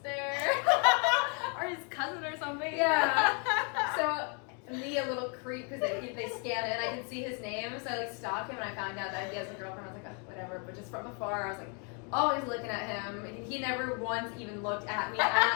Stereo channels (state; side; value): quieter; right; 37.4 dB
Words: sister. Or his cousin or something. Yeah. So me, a little creep, because they scan it and I can see his name. So I like stalk him and I found out that he has a girlfriend. I was like, oh, whatever. But just from afar, I was like, always looking at him. He never once even looked at me at